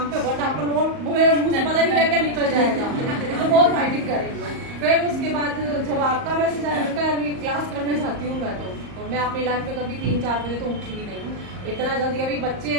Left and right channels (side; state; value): left; late; 38 ms